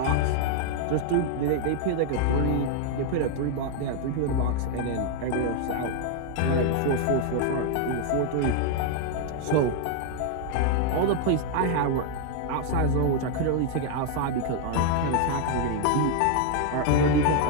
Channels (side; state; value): both; different; correlation 0.00